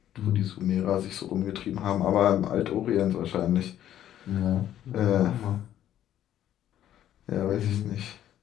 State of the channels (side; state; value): right; quieter; 11.5 dB